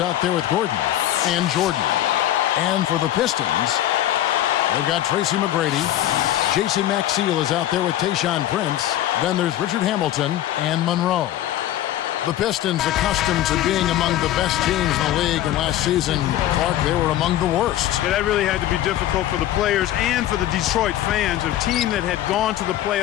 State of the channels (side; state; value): right; quieter; 13.0 dB